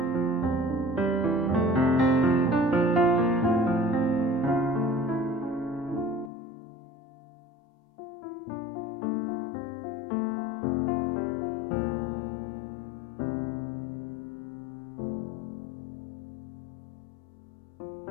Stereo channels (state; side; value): drops out; right; at 6.3 s